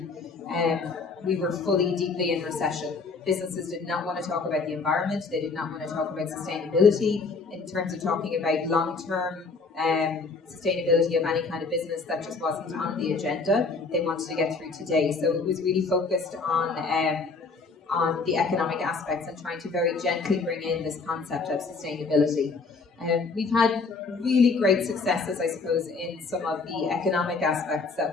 we were fully, deeply in recession. Businesses did not want to talk about the environment. They did not want to talk about sustainability in terms of talking about long-term sustainability of any kind of business. That just wasn't on the agenda. They wanted to get through today. So it was really focused on the economic aspects and trying to very gently bring in this concept of sustainability. We've had really great successes, I suppose, in some of the economic aspects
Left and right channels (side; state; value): right; quieter; 4.3 dB